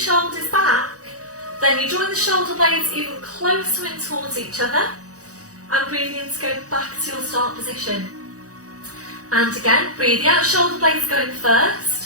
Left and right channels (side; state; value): left; late; 0.66 ms